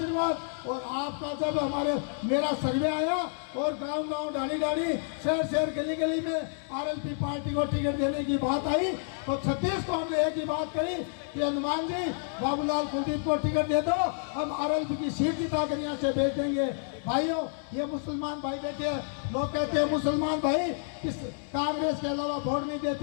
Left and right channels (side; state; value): right; silent; 58 dB below the other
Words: और आपका जब हमारे मेरा सर्वे आया और गांव गांव डाली डाली शहर शहर गली गली में आरएलपी पार्टी को टिकट देने की बात आई तो 36 को हमने एक ही बात कही कि हनुमान जी बाबूलाल कुलदीप को टिकट दे दो, हम आरएलपी की सीट जिता कर यहाँ से भेज देंगे। भाइयों, ये मुसलमान भाई बैठे हैं, लोग कहते हैं मुसलमान भाई किस कांग्रेस के अलावा वोट नहीं